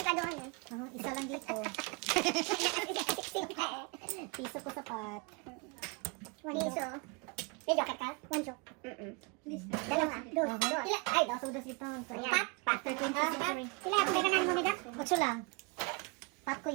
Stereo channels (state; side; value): quieter; left; 29.7 dB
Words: ka doon eh. isa lang dito. 16 ka eh. Piso ko sapat. Piso. May joker ka? 1 joke. Dalawa. Dos. Ila, ay, dos. Sodas dito. Pat. After 20th century. Sila, pwede ka na lumida. 8 lang. Pat ko